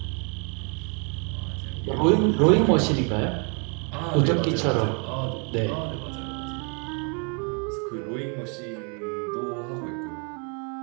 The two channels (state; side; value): quieter; left; 37.5 dB